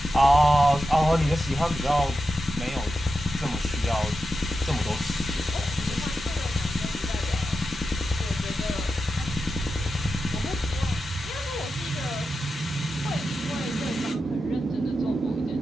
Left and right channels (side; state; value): both; normal; correlation 0.89